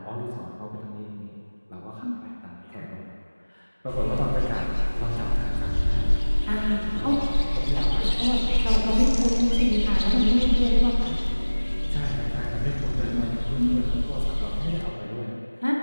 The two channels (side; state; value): both; inverted; correlation -1.00